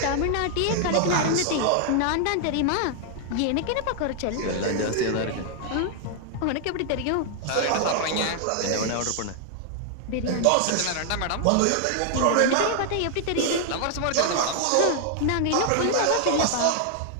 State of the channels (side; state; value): both; different; correlation 0.00